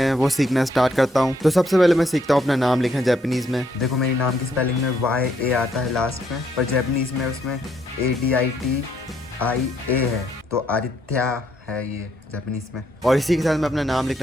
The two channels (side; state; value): both; normal; correlation 0.72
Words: वो सीखना स्टार्ट करता हूँ। तो सबसे पहले मैं सीखता हूँ अपना नाम लिखना जापानीज में। देखो, मेरी नाम की स्पेलिंग में YA आता है लास्ट में, पर जापानीज में उसमें ADITIA है, तो आदित्य है ये जापानीज में। और इसी के साथ मैं अपना नाम